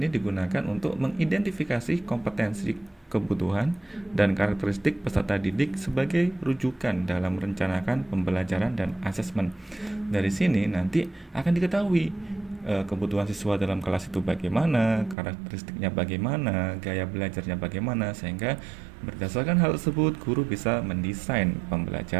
digunakan untuk mengidentifikasi kompetensi, kebutuhan, dan karakteristik peserta didik sebagai rujukan dalam merencanakan pembelajaran dan asesmen. Dari sini nanti akan diketahui kebutuhan siswa dalam kelas itu bagaimana, karakteristiknya bagaimana, gaya belajarnya bagaimana, sehingga berdasarkan hal tersebut guru bisa mendesain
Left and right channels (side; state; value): left; drops out; at 15.2 s